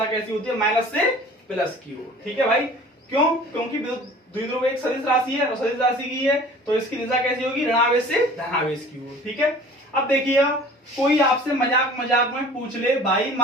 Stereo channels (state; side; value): normal; both; correlation 0.46